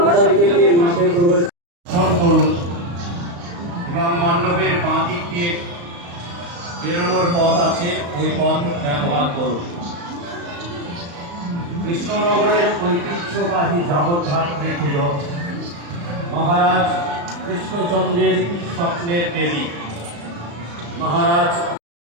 সাইকেল নিয়ে মাঠে প্রবেশ করুন এবং মণ্ডপের বাঁ দিক দিয়ে বেরোনোর পথ আছে, ওই পথ ব্যবহার করুন। কৃষ্ণনগরের ঐতিহ্যবাহী জগদ্ধাত্রী পুজো মহারাজ কৃষ্ণচন্দ্রের স্বপ্নের দেবী মহারাজ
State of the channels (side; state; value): left; late; 35 ms